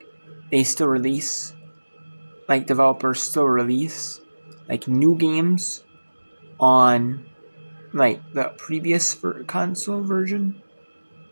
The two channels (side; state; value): both; inverted; correlation -1.00